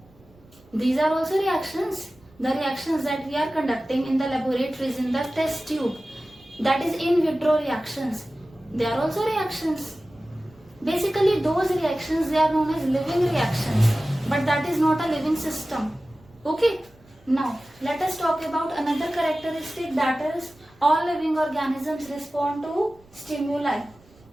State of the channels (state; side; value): noise; right; rumble, 28 dB below the sound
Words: These are also reactions. The reactions that we are conducting in the laboratories, in the test tube, that is in vitro reactions. They are also reactions. Basically, those reactions, they are known as living reactions, but that is not a living system. Okay? Now, let us talk about another characteristic, that is all living organisms respond to stimuli.